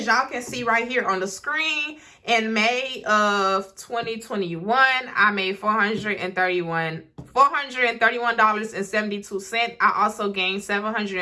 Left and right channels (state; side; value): identical; both; correlation 1.00